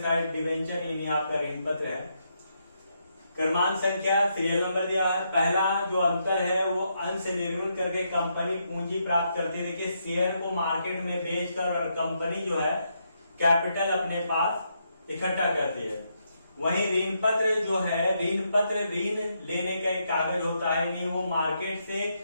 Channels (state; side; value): inverted; both; correlation -0.79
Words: डिवेंचर यानी आपका ऋण पत्र है। क्रमांक संख्या सीरियल नंबर दिया है। पहला जो अंतर है वो अंश निर्मित करके कंपनी पूंजी प्राप्त करती है। देखिए, शेयर को मार्केट में बेचकर और कंपनी जो है कैपिटल अपने पास इकट्ठा करती है। वहीं ऋण पत्र जो है, ऋण पत्र ऋण लेने का एक कागज होता है, नहीं वो मार्केट से